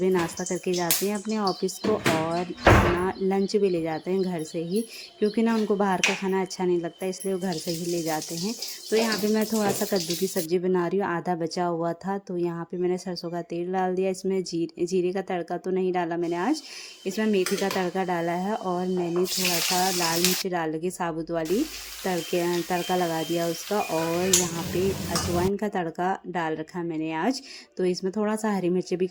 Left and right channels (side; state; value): both; identical; correlation 1.00